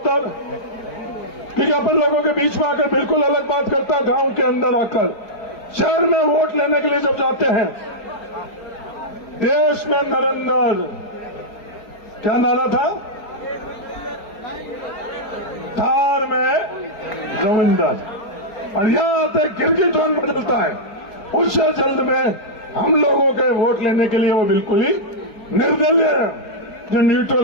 क्योंकि अपन लोगों के बीच में आकर बिल्कुल अलग बात करता, गांव के अंदर आकर शहर में वोट लेने के लिए जब जाते हैं, देश में नरेंद्र, क्या नारा था, थार में रविंदर, और यहां आते गिरगिट टोन बदलता है। उससे जल्द में हम लोगों के वोट लेने के लिए वो बिल्कुल ही निर्दलीय है, जो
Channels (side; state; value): right; late; 4.4 ms